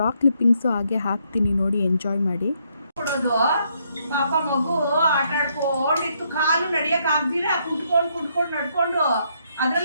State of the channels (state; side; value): inverted; both; correlation -0.73